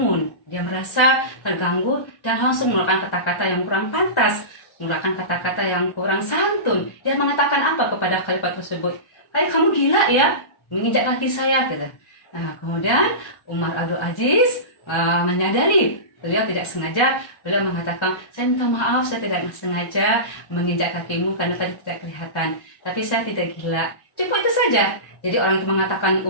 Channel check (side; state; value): right; late; 1.3 ms